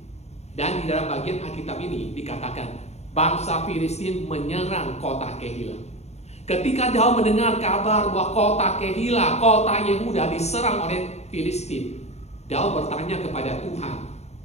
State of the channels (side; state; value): right; late; 0.32 ms